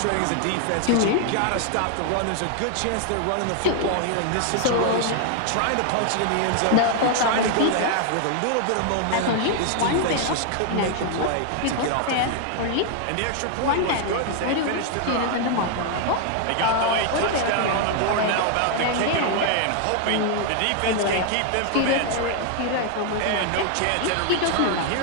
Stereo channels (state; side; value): different; both; correlation 0.00